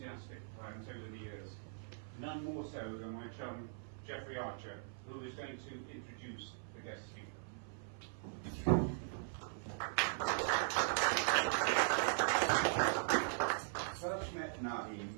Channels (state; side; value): silent; left; 51 dB below the other